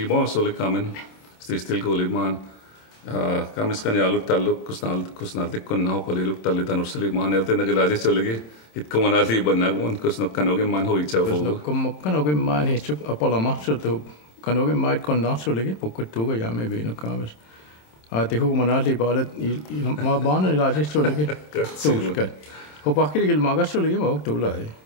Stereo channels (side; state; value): right; late; 27 ms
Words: sulik kamin stil kuulimaan kamiskan jaalut talluk kusnaltikkun naho paliluk tallitanusili maan eltin gilajis joligi hitkumanatli bannagun kusnokkanogin maan hoitsa fugu kusnokkanogin maan hitsuk apala mahsutu kanogin maat konnahtsulikin pukkuttuuga jaame biinuk kamis ati hukumanatli baalet ma baanan ilajis joligi tuuskat hopahkiligil magassulikin mauk tuulai